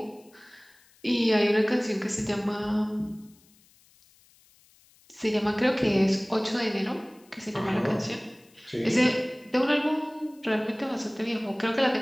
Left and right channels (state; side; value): noise; left; hiss, 30 dB below the sound